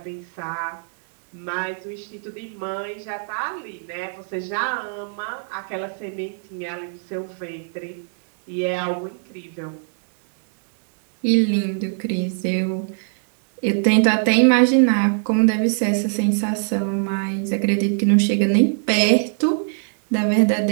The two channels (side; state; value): left; silent; digital silence